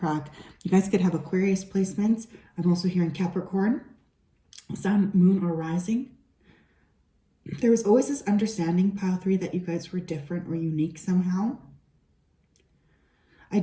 You guys could have Aquarius placements. I'm also hearing Capricorn, Sun, Moon, or Rising. There was always this understanding, pile 3, that you guys were different or unique somehow. I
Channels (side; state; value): both; identical; correlation 1.00